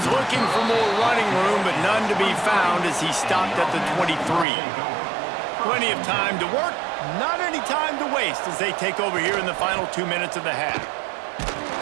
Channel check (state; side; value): drops out; left; at 4.5 s